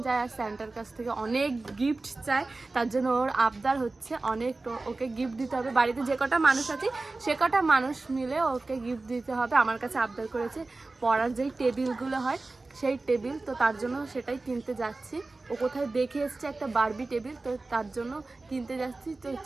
চায় আর স্যান্টার কাছ থেকে অনেক গিফট চায়। তার জন্য ওর আবদার হচ্ছে অনেক, ওকে গিফট দিতে হবে। বাড়িতে যে কটা মানুষ আছে সে কটা মানুষ মিলে ওকে গিফট দিতে হবে। আমার কাছে আবদার করেছে পড়ার যেই টেবিলগুলো হয় সেই টেবিল, তো তার জন্য সেটাই কিনতে যাচ্ছি। ও কোথায় দেখে এসছে একটা বারবি টেবিল, তো তার জন্য কিনতে যাচ্ছি। তো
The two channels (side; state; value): left; quieter; 3.4 dB